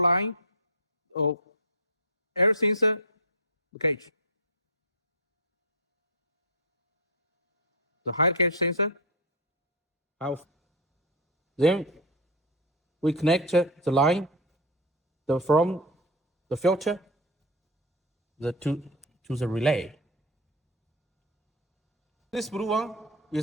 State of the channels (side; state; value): both; normal; correlation 0.10